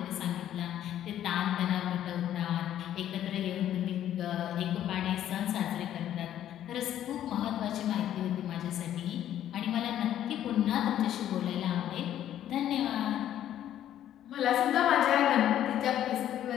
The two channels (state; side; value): quieter; right; 11.4 dB